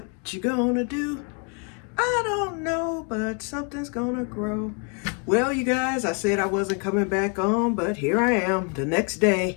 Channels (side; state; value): right; quieter; 36.7 dB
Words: you gonna do? I don't know, but something's gonna grow. Well, you guys, I said I wasn't coming back on, but here I am the next